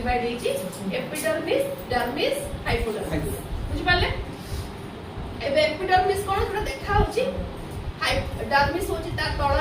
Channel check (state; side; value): identical; both; correlation 1.00